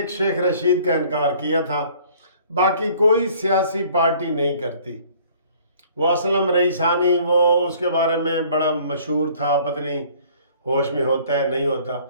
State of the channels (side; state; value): both; inverted; correlation -0.55